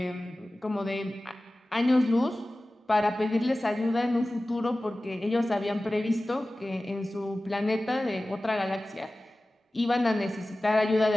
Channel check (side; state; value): both; normal; correlation 0.97